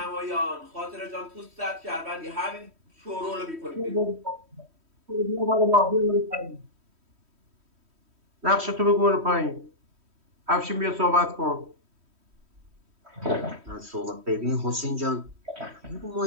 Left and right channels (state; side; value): late; left; 3.1 ms